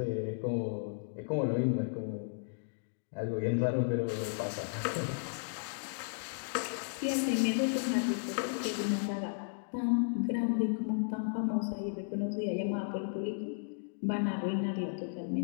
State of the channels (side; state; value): right; silent; digital silence